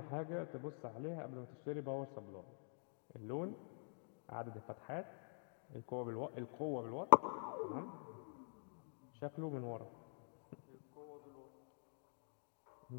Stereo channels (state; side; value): silent; right; digital silence